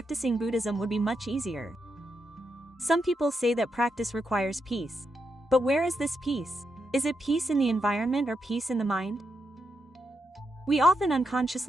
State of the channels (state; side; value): normal; both; correlation 0.84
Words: Buddhism would be much easier. Some people say that practice requires peace. But where is this peace? Is it peace in the environment or peace in the mind? We often